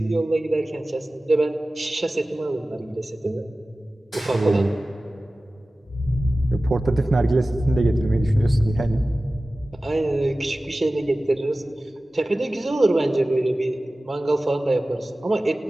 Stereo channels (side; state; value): both; normal; correlation 0.96